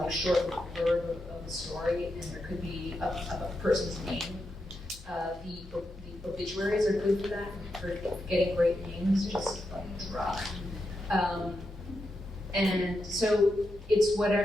short word of a story, and there could be a person's name. The obituaries are good for that, for getting great names, just like drop. And so it's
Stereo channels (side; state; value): both; normal; correlation 0.86